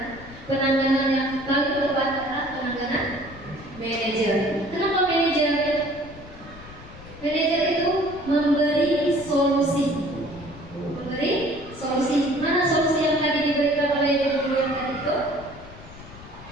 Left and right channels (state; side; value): noise; left; rumble, 17 dB below the sound